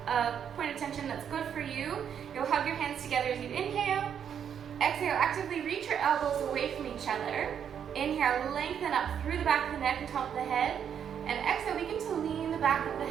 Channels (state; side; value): quieter; left; 8.3 dB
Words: point of tension that's good for you, you'll hug your hands together as you inhale. Exhale, actively reach your elbows away from each other. Inhale, lengthen up through the back of the neck and top of the head. And exhale, begin to lean the back of the